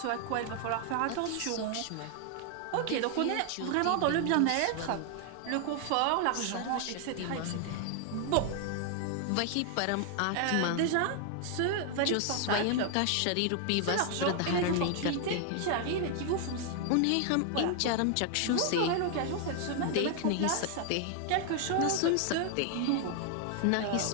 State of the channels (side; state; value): both; different; correlation 0.00